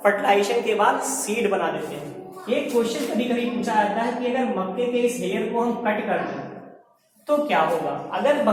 फर्टिलाइजेशन के बाद सीड बना देते हैं। एक क्वेश्चन कभी कभी पूछा जाता है कि अगर मक्के के इस हेयर को हम कट कर दें तो क्या होगा। अगर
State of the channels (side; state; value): both; identical; correlation 1.00